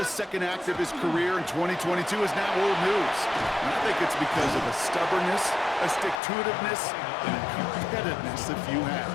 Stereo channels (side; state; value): right; drops out; at 6.2 s